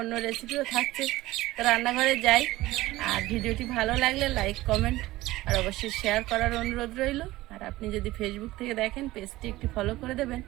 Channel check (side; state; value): left; quieter; 17.7 dB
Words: অন্য রেসিপিও থাকছে। তো রান্নাঘরে যাই, আর ভিডিওটি ভালো লাগলে লাইক, কমেন্ট আর অবশ্যই শেয়ার করার অনুরোধ রইল। আর আপনি যদি ফেসবুক থেকে দেখেন, পেজটি একটি ফলো করে দেবেন।